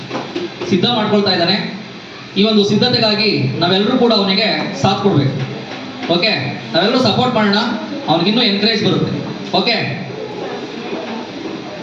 ಸಿದ್ಧ ಮಾಡ್ಕೊಳ್ತಾ ಇದ್ದಾನೆ. ಈ ಒಂದು ಸಿದ್ಧತೆಗಾಗಿ ನಾವೆಲ್ಲರೂ ಕೂಡ ಅವನಿಗೆ ಸಾಥ್ ಕೊಡ್ಬೇಕು. ಓಕೆ, ನಾವೆಲ್ಲರೂ ಸಪೋರ್ಟ್ ಮಾಡೋಣ, ಅವನಿಗಿನ್ನೂ ಎನ್ಕರೇಜ್ ಬರುತ್ತೆ. ಓಕೆ,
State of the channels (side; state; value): both; identical; correlation 1.00